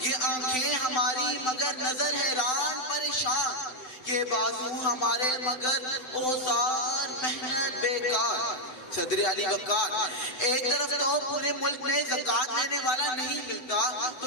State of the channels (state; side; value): late; right; 7.9 ms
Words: آنکھیں ہماری مگر نظر حیران پریشان یہ بازو ہمارے مگر اوزار محنت بیکار صدر علی وقار ایک طرف تو پورے ملک میں زکوٰۃ لینے والا نہیں ملتا